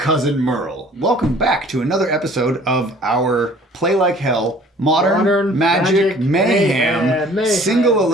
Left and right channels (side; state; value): both; normal; correlation 0.52